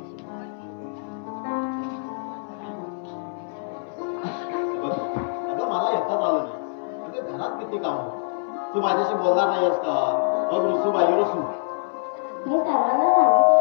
अगं मला एकटाच आलं नाही. अगं घरात किती काम. तू माझ्याशी बोलणार नाहीस का? मग रुसू बाई रुसू. मी सर्वांना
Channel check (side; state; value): right; silent; 61 dB below the other